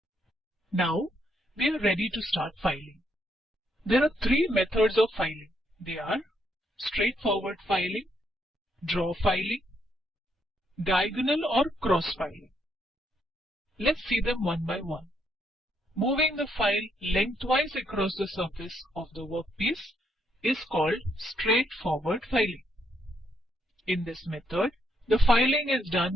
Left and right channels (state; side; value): normal; both; correlation 0.75